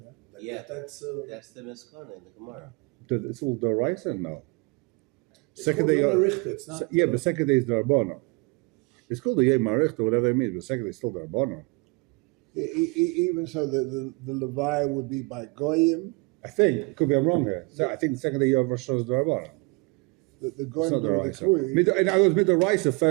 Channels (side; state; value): left; quieter; 29.8 dB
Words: Yeah, That's that's the Miskon in the Gemara. It's all Doraisa? No. it's Second called day, Yom HaRichter, it's not, yeah, but second day is Dorabana. It's called the Yom HaRichter, whatever it means, but second day is still Dorabana. Even so, the Levi would be by Goyim. I think, could be I'm wrong here. So I think the second day you have Rosh Hashanah is Dorabana. The It's Goyim not do the Doraisa. Kuri. In other words, Midoraisa,